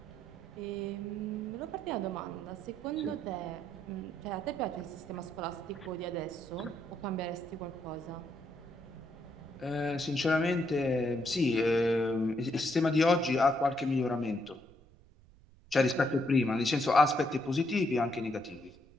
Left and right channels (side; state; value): right; noise; rumble, 26 dB below the sound